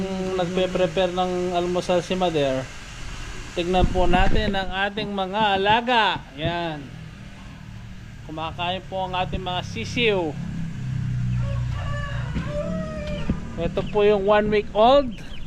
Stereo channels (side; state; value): both; identical; correlation 1.00